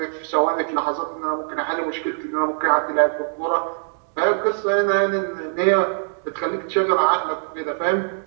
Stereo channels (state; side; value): silent; left; digital silence